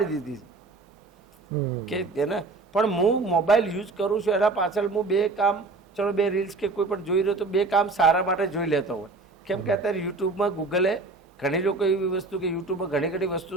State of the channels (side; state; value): left; quieter; 3.6 dB